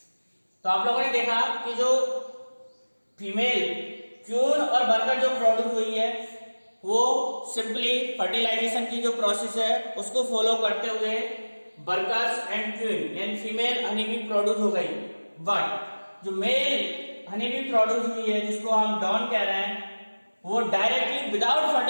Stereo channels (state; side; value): inverted; both; correlation -1.00